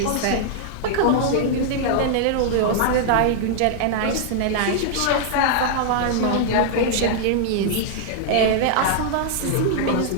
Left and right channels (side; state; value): both; different; correlation -0.01